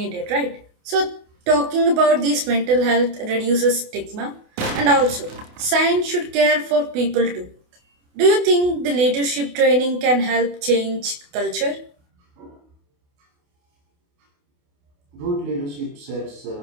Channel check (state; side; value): late; left; 28 ms